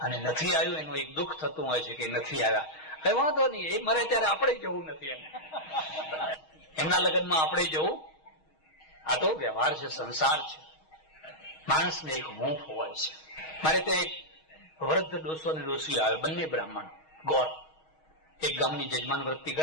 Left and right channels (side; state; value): right; late; 6.3 ms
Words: અને નથી આવ્યું. એનું એક દુઃખ થતું હોય છે કે નથી આવ્યા. કઈ વાંધો નહીં, એ મરે ત્યારે આપણે જવું નથી એને, એમના લગ્નમાં આપણે જવું. આ તો વ્યવહાર છે, સંસાર છે. માણસને એક હૂંફ હોય છે. મારે ત્યાં એક વૃદ્ધ ડોસો ને ડોસી આવે, બંને બ્રાહ્મણ ગોર. એક ગામની જજમાન વૃત્તિ